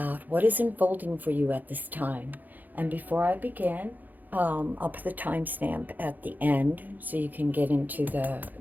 what is unfolding for you at this time. And before I begin, I'll put the timestamp at the end so you can get into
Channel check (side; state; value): left; late; 0.084 ms